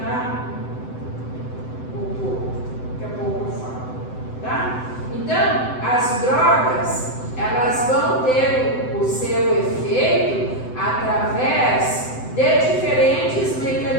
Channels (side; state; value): right; late; 7.8 ms